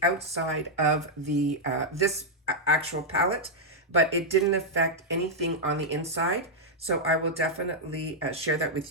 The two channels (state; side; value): normal; both; correlation -0.04